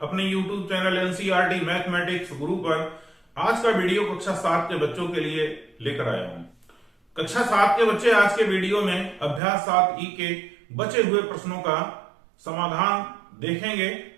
अपने YouTube channel NCERT mathematics गुरु पर आज का वीडियो कक्षा 7 के बच्चों के लिए लेकर आया हूं। कक्षा 7 के बच्चे आज के वीडियो में अभ्यास 7 ई के बचे हुए प्रश्नों का समाधान देखेंगे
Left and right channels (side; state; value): left; drops out; at 9.4 s